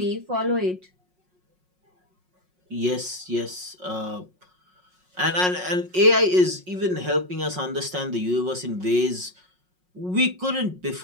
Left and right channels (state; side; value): late; left; 5.5 ms